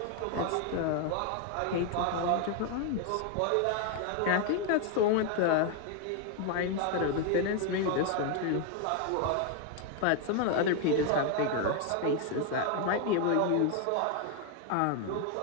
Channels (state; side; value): different; both; correlation 0.01